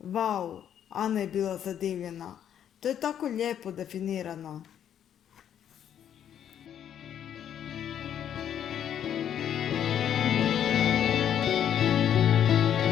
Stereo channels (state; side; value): quieter; right; 9.6 dB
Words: Ana je bila zadivljena. To je tako lijepo definirano.